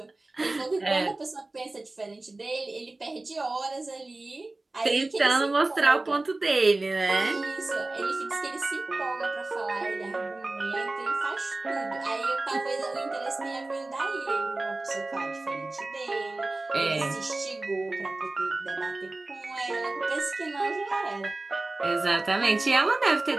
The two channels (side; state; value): left; quieter; 3.0 dB